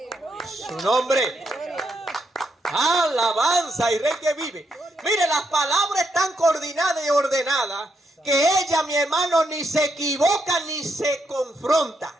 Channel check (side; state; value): both; normal; correlation 0.80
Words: Su nombre. Alabanza y Rey que vive. Mire, las palabras están coordinadas y ordenadas, que ella, mi hermano, ni se equivoca ni se confronta.